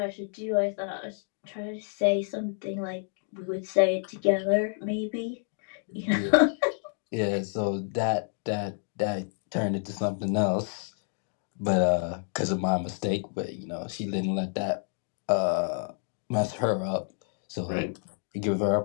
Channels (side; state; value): right; silent; 58 dB below the other